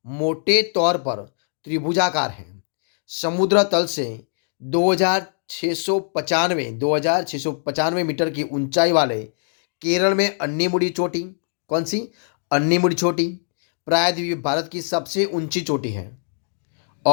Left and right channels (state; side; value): silent; right; digital silence